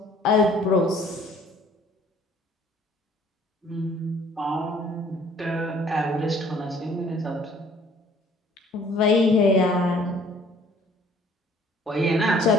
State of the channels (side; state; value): both; normal; correlation 0.57